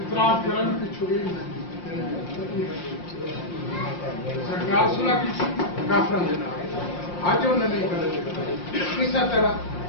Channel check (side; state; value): right; late; 5.7 ms